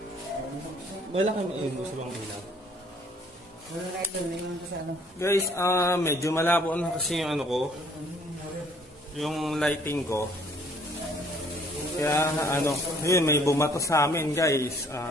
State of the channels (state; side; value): normal; both; correlation 0.60